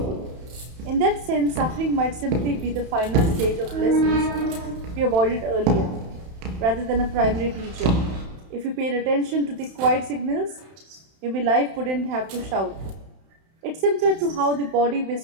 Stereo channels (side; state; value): left; late; 31 ms